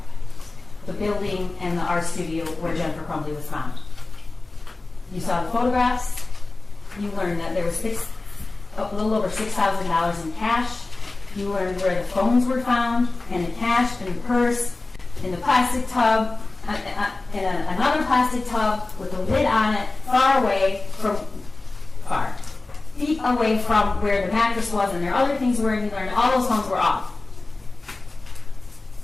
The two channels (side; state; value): right; quieter; 3.3 dB